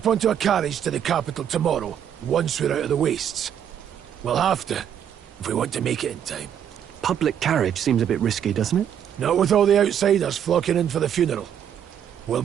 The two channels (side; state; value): left; quieter; 9.2 dB